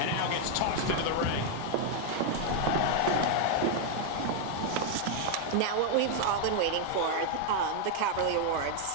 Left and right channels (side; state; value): both; different; correlation 0.00